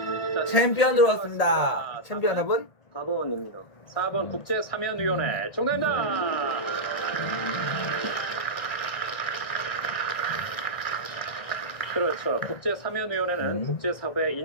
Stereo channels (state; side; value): late; right; 1.6 ms